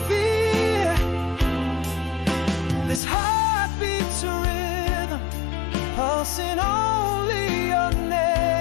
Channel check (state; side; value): drops out; right; at 3.0 s